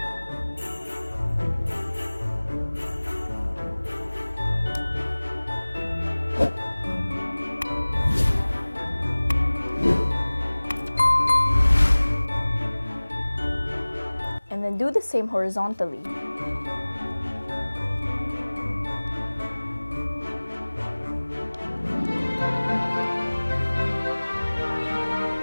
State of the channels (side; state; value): both; inverted; correlation -1.00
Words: And then do the same horizontally.